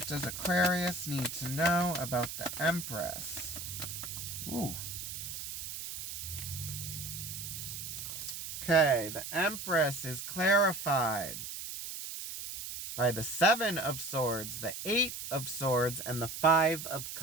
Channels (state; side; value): noise; right; hiss, 7 dB below the sound